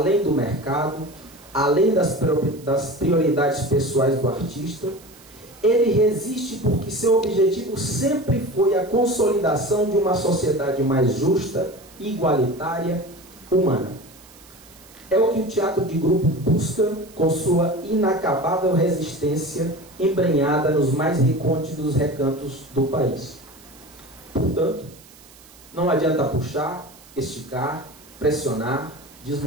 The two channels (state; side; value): noise; right; hiss, 24 dB below the sound